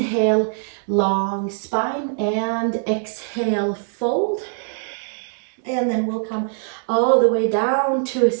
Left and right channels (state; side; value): silent; left; digital silence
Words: long spine, and exhale, fold. And then we'll come all the way down to a